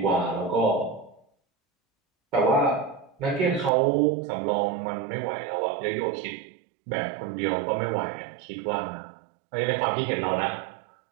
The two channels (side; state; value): left; drops out; at 3.7 s